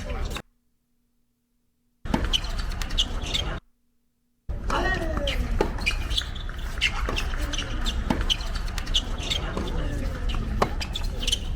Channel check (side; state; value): both; identical; correlation 1.00